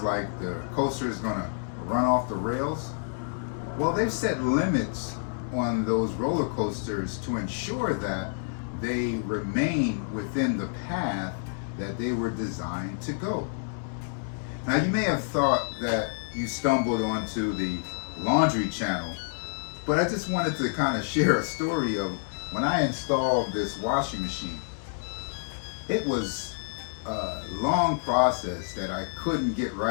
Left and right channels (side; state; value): right; silent; 59 dB below the other